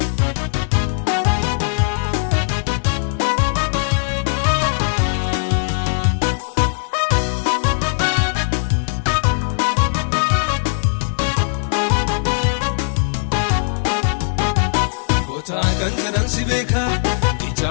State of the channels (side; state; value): right; silent; 64 dB below the other